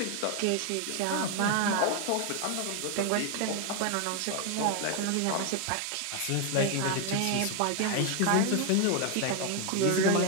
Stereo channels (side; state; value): both; different; correlation 0.01